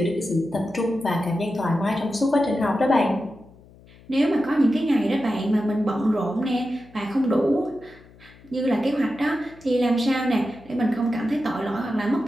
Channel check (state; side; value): noise; left; hum, 24 dB below the sound